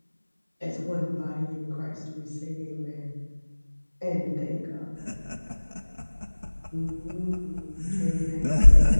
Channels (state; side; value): inverted; both; correlation -1.00